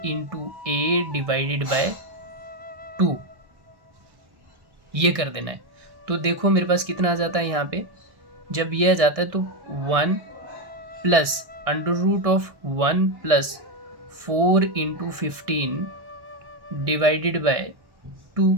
A divided by 2, ये कर देना है। तो देखो मेरे पास कितना आ जाता है यहाँ पे, जब ये आ जाता है तो 1 plus under root of 1 plus 4 into 15 divided by 2।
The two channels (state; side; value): late; left; 1.6 ms